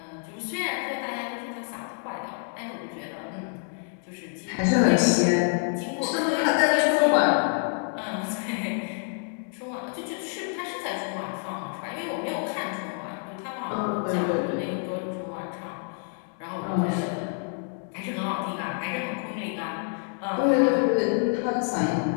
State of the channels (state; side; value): silent; right; 55 dB below the other